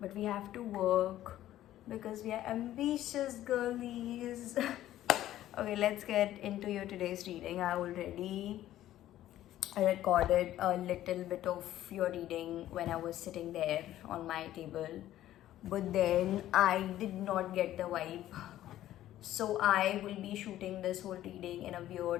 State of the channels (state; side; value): quieter; right; 13.3 dB